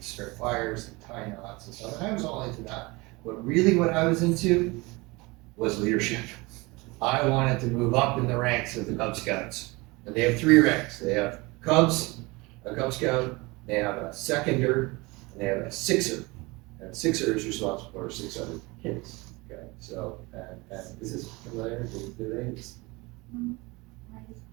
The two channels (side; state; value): left; quieter; 24.4 dB